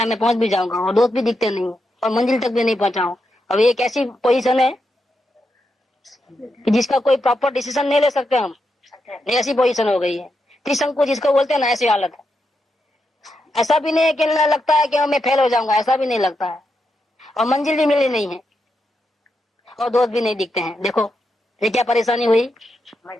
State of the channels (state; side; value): normal; both; correlation 0.84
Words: है मैं पहुंच भी जाऊंगा और दोस्त भी दिखते नहीं और मंजिल तक भी नहीं पहुंचा हूं। अब ये एक ऐसी पोजीशन है कि जिसका कोई प्रॉपर डिसीजन नहीं ले सकते हम, ये ऐसी पोजीशन हो गई है। त्रिशंकु जिसको बोलते हैं ना, ऐसी हालत है। ऐसा भी नहीं है कि लगता है कि मैं फेल हो जाऊंगा, ऐसा भी नहीं लगता है। और मंजिल भी मिली नहीं है और दोस्त भी नहीं दिखते हैं। देखो ये क्या परेशानी हुई।